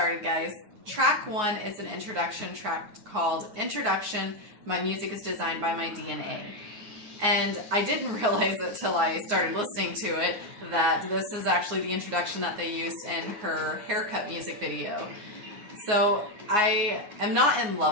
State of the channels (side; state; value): left; late; 9.5 ms